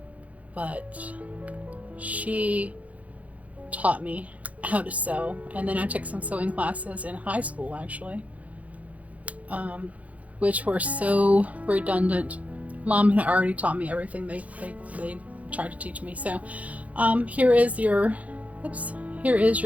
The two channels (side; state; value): left; late; 0.069 ms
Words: But she taught me how to sew. And then I took some sewing classes in high school, actually, which were so redundant. Mom had already taught me everything they tried to teach me. So here is your